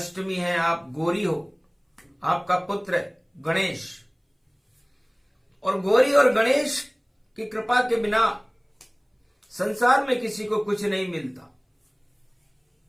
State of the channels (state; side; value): identical; both; correlation 1.00